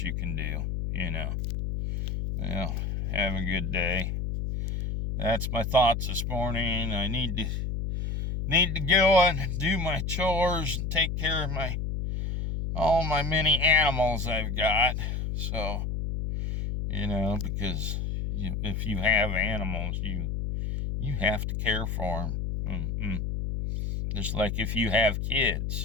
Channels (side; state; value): left; noise; hum, 2 dB below the sound